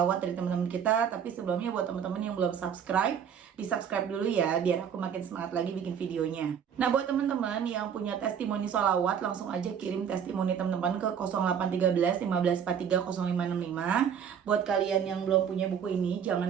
dari teman-teman kita. Tapi sebelumnya buat teman-teman yang belum subscribe, di subscribe dulu ya, biar aku makin semangat lagi bikin videonya. Nah, buat teman-teman yang punya testimoni sholawat, langsung aja kirim testimoni teman-teman ke 0813 1543 0565. Buat kalian yang belum punya buku ini,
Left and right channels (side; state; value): left; quieter; 7.9 dB